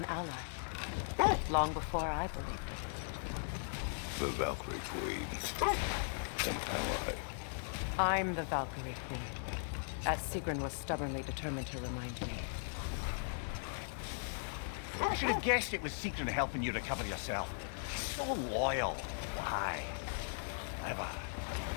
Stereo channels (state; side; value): silent; right; digital silence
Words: ally. Long before I believed it. The Valkyrie Queen. An ally. I'm the Valkyrie Queen, as Sigrun was stubbornly determined to remind me. I should have guessed it was Sigrun helping you recover yourself. So loyal. Why? Ever.